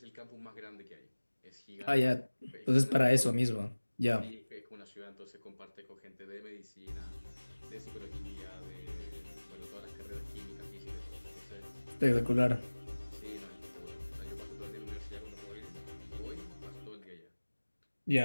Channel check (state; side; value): inverted; both; correlation -1.00